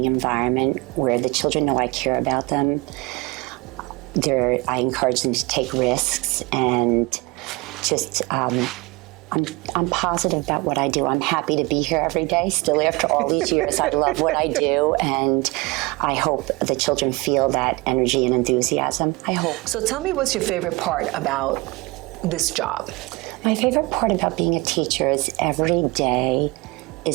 environment where the children know I care about them. I encourage them to take risks, and just I'm positive about what I do. I'm happy to be here every day. Still, after all these years, I love what I do, and I hope the children feel that energy and enthusiasm. I hope. So tell me, what's your favorite part about this job? My favorite part about being a teacher is every day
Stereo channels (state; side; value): quieter; left; 24.4 dB